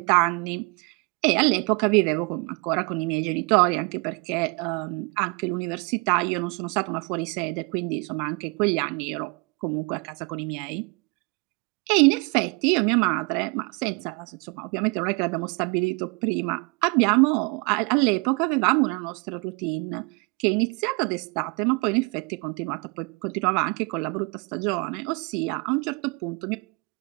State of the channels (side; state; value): left; quieter; 30.0 dB